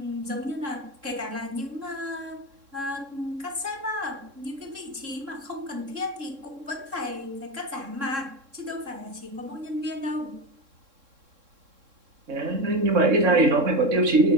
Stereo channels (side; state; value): left; late; 3.7 ms